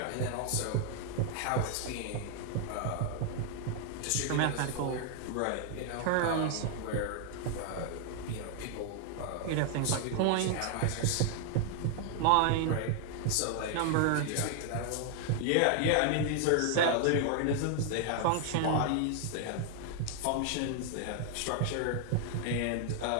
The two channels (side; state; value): both; different; correlation 0.00